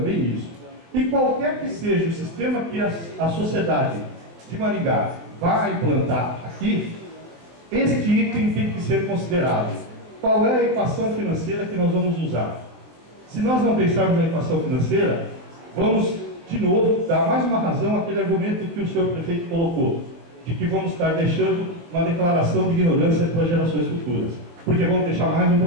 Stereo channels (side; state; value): left; late; 23 ms